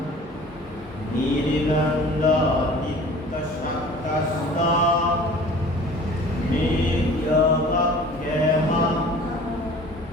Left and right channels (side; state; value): both; normal; correlation 0.45